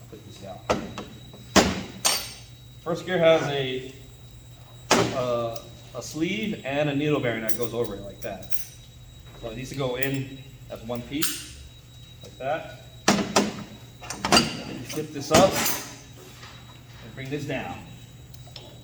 put this down. First gear has a sleeve and a needle bearing that goes over it like that. So it needs to go in as one piece, like that. And then you flip this up and bring this down.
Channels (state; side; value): identical; both; correlation 1.00